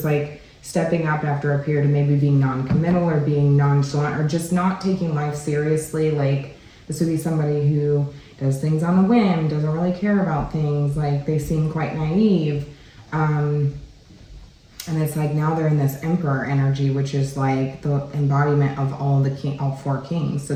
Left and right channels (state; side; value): identical; both; correlation 1.00